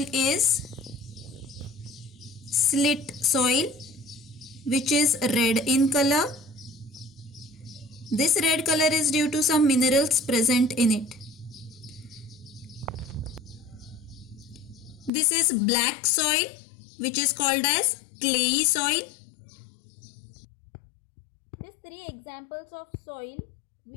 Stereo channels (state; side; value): drops out; right; at 15.1 s